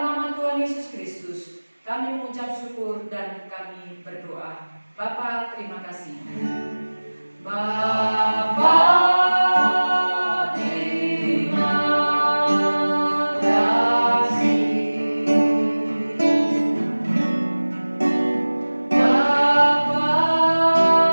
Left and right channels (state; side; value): inverted; both; correlation -1.00